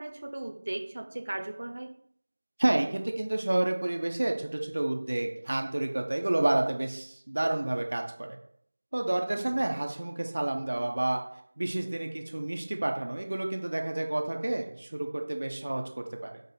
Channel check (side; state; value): both; inverted; correlation -1.00